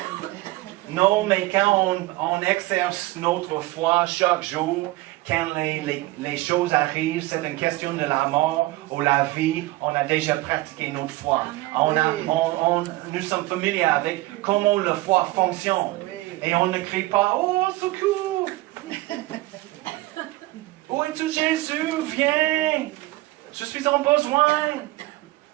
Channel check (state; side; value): quieter; left; 19.4 dB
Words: Non, mais quand on exerce notre foi chaque jour, quand les choses arrivent, c'est une question de la mort ou la vie, on a déjà pratiqué notre foi. Nous sommes familiers avec comment la foi fonctionne. Et on ne crie pas, oh, secours! Où es-tu, Jésus? Viens! Je suis en besoin!